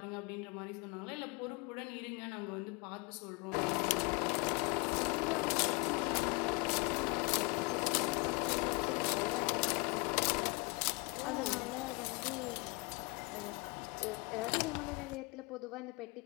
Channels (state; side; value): quieter; right; 28.9 dB